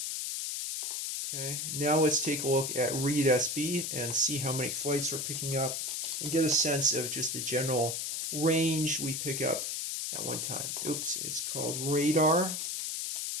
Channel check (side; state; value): left; noise; hiss, 2 dB below the sound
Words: Okay, now let's take a look at read SB and see how many flights we're picking up and get a sense of just the general range we pick up at one time. Oops, it's called radar.